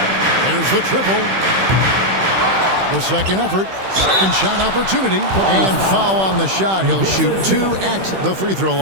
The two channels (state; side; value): late; left; 16 ms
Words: There's the triple. The second effort. Second shot opportunity. And foul on the shot. He'll shoot 2 at the free throw